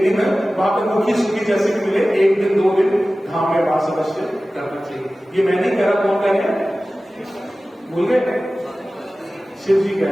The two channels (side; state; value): both; normal; correlation 0.96